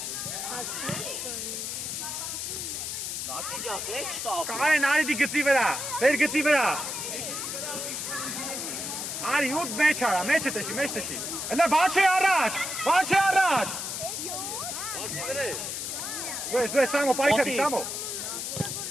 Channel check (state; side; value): noise; left; hiss, 4 dB below the sound